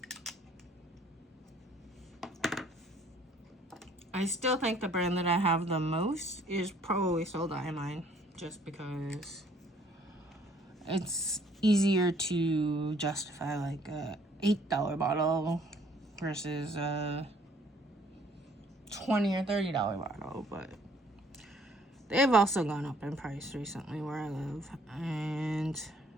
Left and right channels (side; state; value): both; normal; correlation 0.60